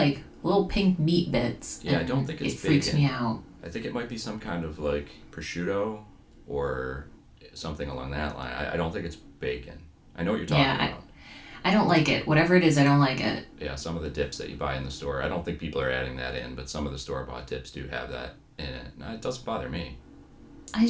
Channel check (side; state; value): both; identical; correlation 1.00